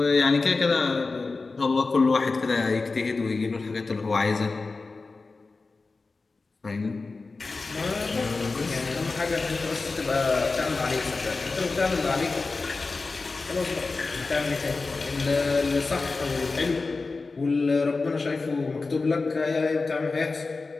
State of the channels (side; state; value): right; quieter; 3.9 dB